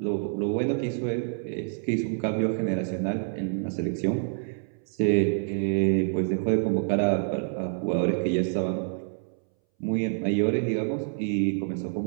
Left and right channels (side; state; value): left; silent; 60 dB below the other